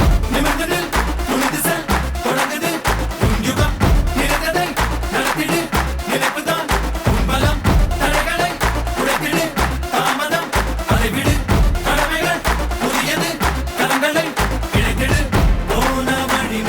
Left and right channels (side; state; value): both; identical; correlation 1.00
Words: நிமிர்ந்து நில், துணிந்து செல், தொடங்குது உன் யுகம். நினைத்ததை நடத்திடு, நினைப்புதான் உன் பலம். தடைகளை உடைத்திடு, தாமதம் அதை விடு. கடமைகள் புதியது, கரங்களை இணைத்திடு. போன வழி